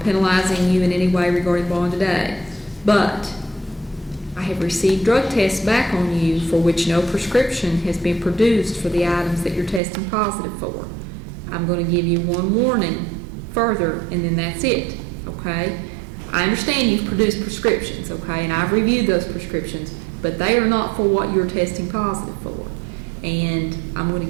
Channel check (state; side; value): drops out; left; at 9.8 s